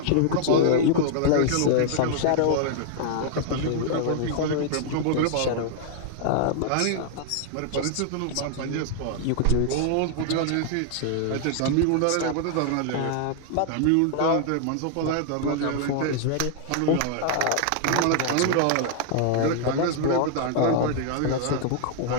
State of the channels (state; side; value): different; both; correlation 0.00